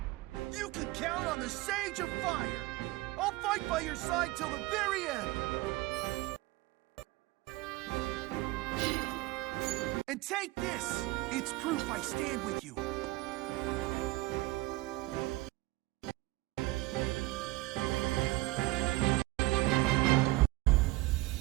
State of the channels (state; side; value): quieter; left; 20.4 dB